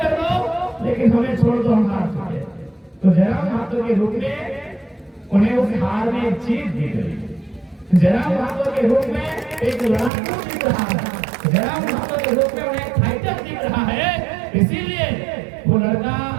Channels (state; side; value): drops out; left; at 10.1 s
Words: दो, लेकिन हमें छोड़ दो, हम हार चुके हैं। तो जयराम महतो के रूप में उन्हें उस हार में जीत दी गई। जयराम महतो के रूप में एक लड़ाकू दिख रहा है, जयराम महतो के रूप में उन्हें फाइटर दिख रहा है। इसीलिए वो लड़का